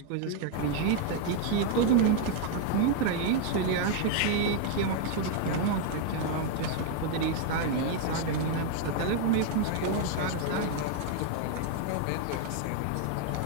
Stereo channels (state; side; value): different; both; correlation 0.00